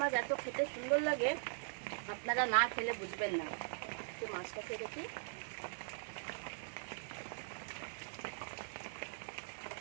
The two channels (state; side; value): silent; left; digital silence